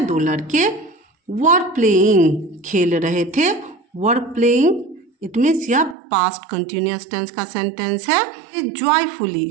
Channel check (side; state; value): left; drops out; at 6.0 s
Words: दो लड़के वर प्लेइंग, खेल रहे थे। वर प्लेइंग इट मीन्स यह पास्ट कंटिन्यूअस टेंस का सेंटेंस है। जॉयफुली,